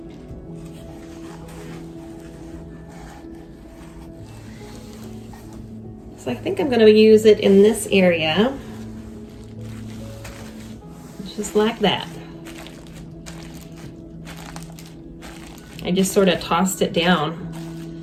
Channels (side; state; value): both; identical; correlation 1.00